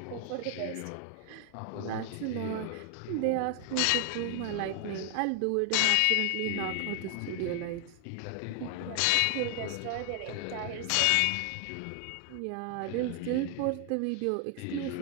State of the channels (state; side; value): different; both; correlation 0.00